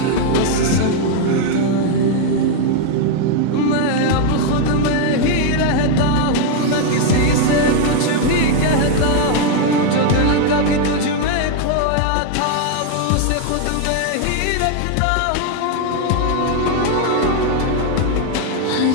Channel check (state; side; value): different; both; correlation 0.00